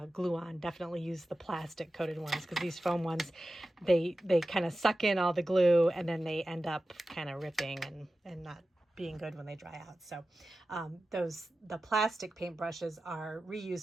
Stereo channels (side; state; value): both; normal; correlation 0.94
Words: glue on, definitely use the plastic coated ones, because these foam ones, they kind of suck in all the glue and then they end up kind of ripping and not being good when they dry out. So the plastic paintbrushes are